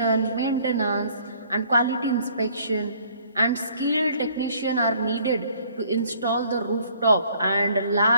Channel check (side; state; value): both; inverted; correlation -0.60